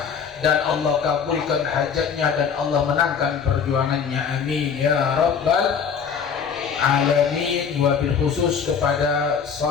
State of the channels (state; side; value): quieter; right; 6.7 dB